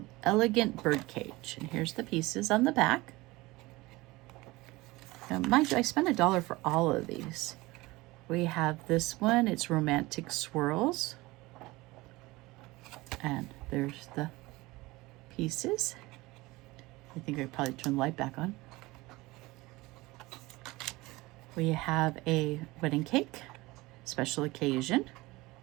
Elegant Bird Cage. And here's the pieces on the back. Now, mind you, I spent $1 for all of these. We have this one. It's Romantic Swirls. And there's the pieces. I think I probably turn the light back on. We have a wedding cake, special occasion.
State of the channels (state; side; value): quieter; left; 21.1 dB